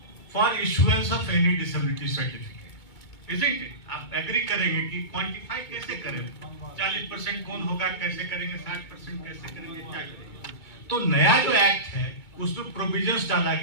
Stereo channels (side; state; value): right; late; 2.2 ms